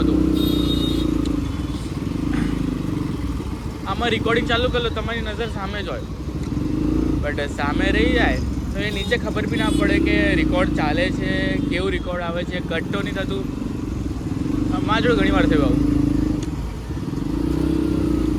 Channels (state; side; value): identical; both; correlation 1.00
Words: આમાં રેકોર્ડિંગ ચાલુ કરી લો, તમારી નજર સામે જ હોય, બટ સામે રહી જાય તો એ નીચે ખબર બી ના પડે કે રેકોર્ડ ચાલે છે, કેવું રેકોર્ડ આવે છે, કટ તો નહીં થતું. મારા જોડે ઘણી વાર થયું આવું.